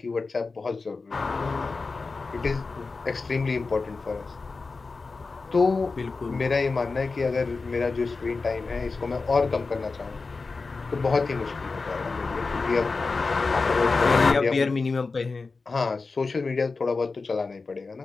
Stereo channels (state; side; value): quieter; right; 4.1 dB